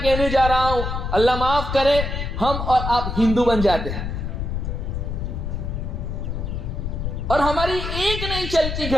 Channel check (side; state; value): left; noise; rumble, 3 dB below the sound